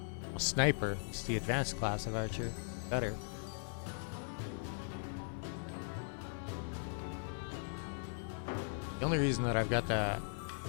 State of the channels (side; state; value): right; silent; 52 dB below the other